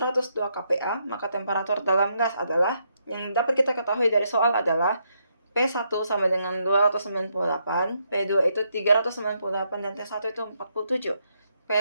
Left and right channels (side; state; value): both; inverted; correlation -0.78